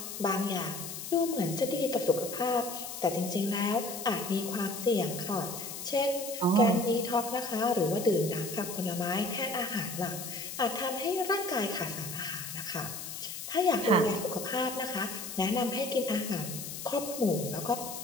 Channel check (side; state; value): left; noise; hiss, 8 dB below the sound